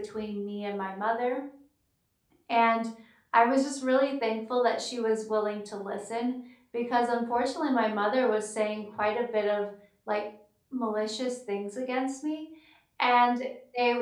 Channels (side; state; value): both; identical; correlation 1.00